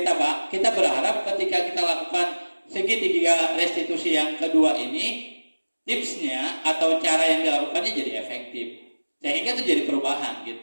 berharap ketika kita lakukan segitiga restitusi yang kedua ini, tipsnya atau cara yang dilakukannya jadi efektif, sehingga itu jadi perubahan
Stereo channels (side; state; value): both; inverted; correlation -1.00